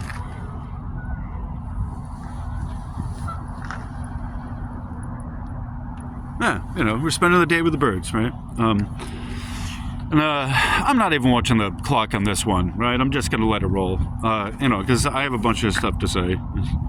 Yeah, you know, we're spending the day with the birds, right? And I'm not even watching the clock on this one, right? I'm just going to let it roll, you know, because I have a bunch of stuff to say.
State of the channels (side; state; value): both; identical; correlation 1.00